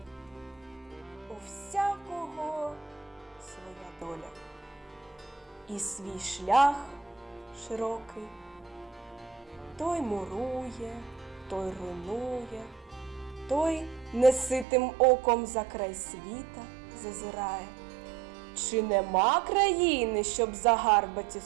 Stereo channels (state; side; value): drops out; left; at 14.7 s